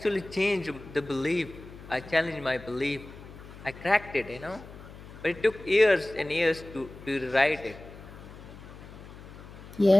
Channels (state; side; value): noise; left; hum, 16 dB below the sound